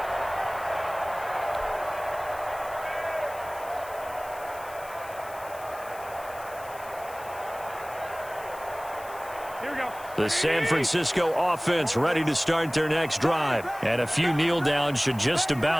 The San Francisco offense ready to start their next drive. And a few kneel downs should just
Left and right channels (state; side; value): noise; left; hiss, 19 dB below the sound